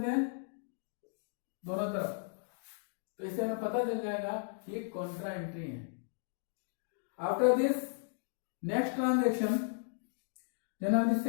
हैं दोनों तरफ, तो इससे हमें पता चल जाएगा कि ये कॉन्ट्रा एंट्री है। After this next transaction January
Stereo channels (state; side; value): silent; right; digital silence